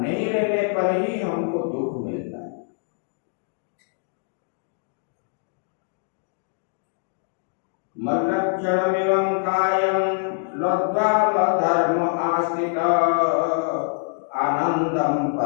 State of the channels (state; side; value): silent; right; digital silence